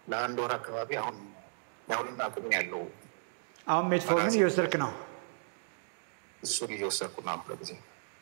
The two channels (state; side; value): silent; left; digital silence